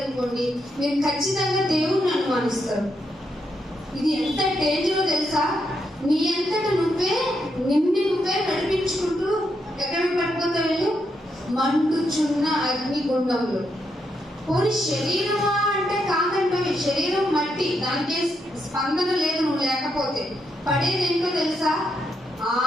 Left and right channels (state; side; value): normal; both; correlation 0.81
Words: మీరు ఖచ్చితంగా దేవుణ్ణి అనుమానిస్తారు. ఇది ఎంత డేంజరో తెలుసా? నీ అంతట నిన్ను నువ్వే నడిపించుకుంటూ ఎక్కడ పడిపోతావు వెళ్ళు? మండుచున్న అగ్నిగుండంలో. పోనీ శరీరమా అంటే కాదంటే శరీరం మట్టి, దానికే స్పందన లేదు. నువ్వు లేకపోతే పడేది ఏంటో తెలుసా?